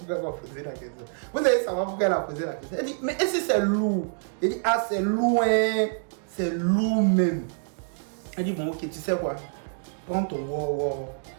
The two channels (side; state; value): left; silent; digital silence